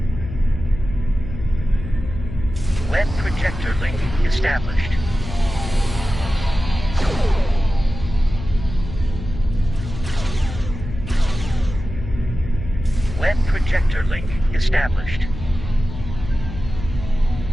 Web projector link established. Web projector link established.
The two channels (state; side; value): noise; left; hum, 9 dB below the sound